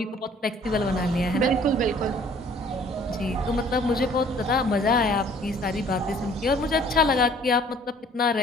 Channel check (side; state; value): both; normal; correlation 0.55